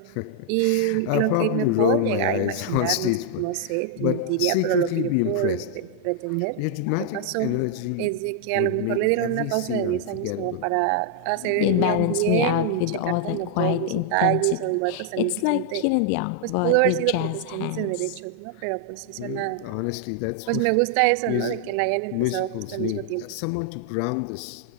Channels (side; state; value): both; different; correlation 0.00